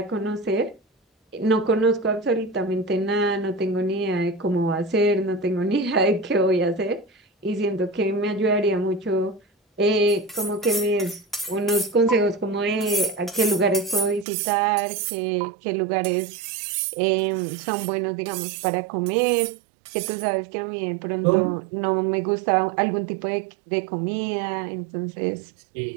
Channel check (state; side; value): drops out; left; at 14.2 s